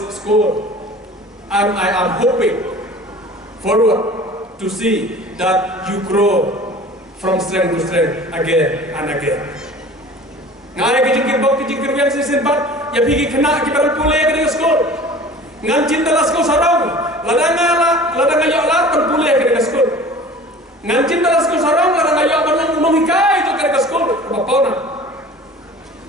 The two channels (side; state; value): both; normal; correlation 0.43